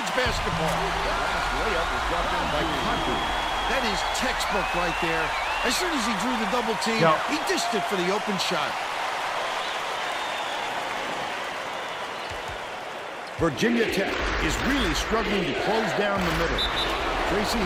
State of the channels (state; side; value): identical; both; correlation 1.00